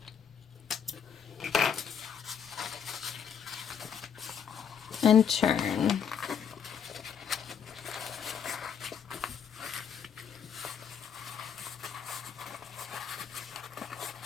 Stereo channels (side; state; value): right; quieter; 7.7 dB